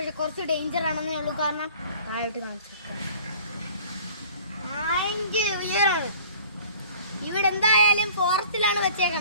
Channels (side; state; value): both; inverted; correlation -0.48